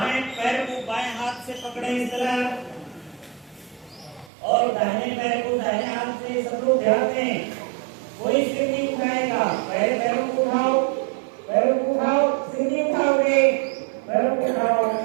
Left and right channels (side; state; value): left; drops out; at 4.3 s